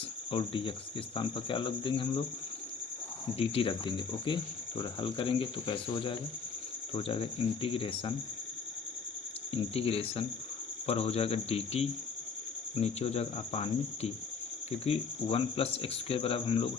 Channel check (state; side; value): quieter; right; 5.6 dB